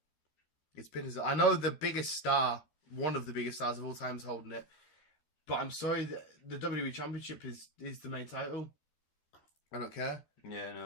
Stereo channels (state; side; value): late; right; 13 ms